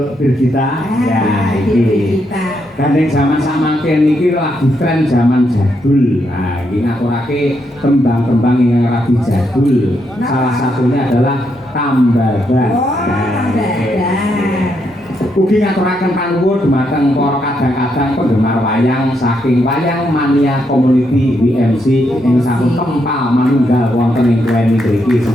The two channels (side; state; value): both; normal; correlation 0.79